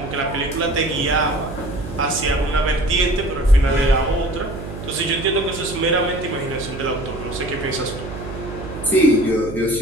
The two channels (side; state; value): right; noise; hum, 10 dB below the sound